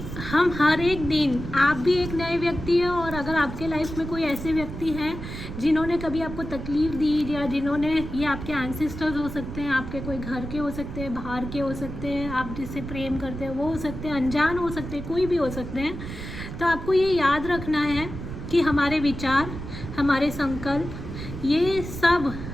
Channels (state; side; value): noise; right; rumble, 9 dB below the sound